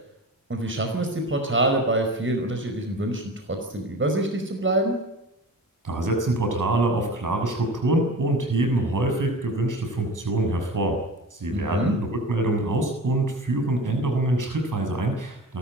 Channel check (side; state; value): both; normal; correlation 0.35